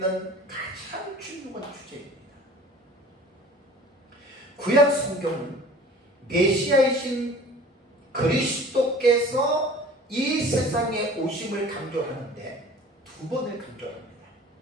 가장 중요한 주제입니다. 구약 성경은 메시아이신 그리스도께서 이 세상에 오심을 강조하는데 두 번을 강조합니다.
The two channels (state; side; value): normal; both; correlation 0.45